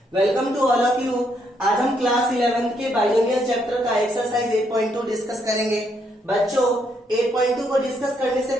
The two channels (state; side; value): normal; both; correlation 0.74